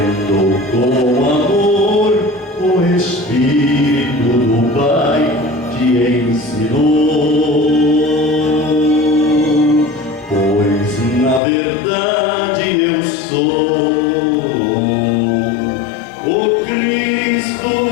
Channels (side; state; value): right; drops out; at 11.4 s